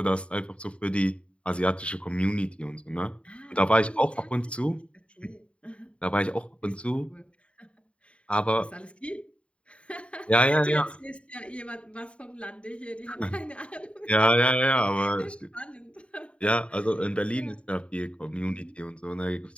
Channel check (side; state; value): right; late; 0.060 ms